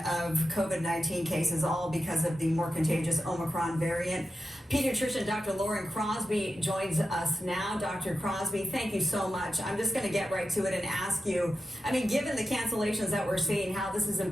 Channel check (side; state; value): both; normal; correlation 0.90